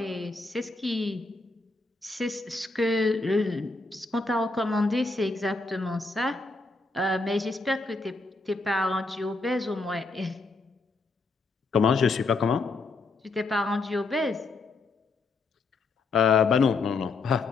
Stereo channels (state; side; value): quieter; right; 3.6 dB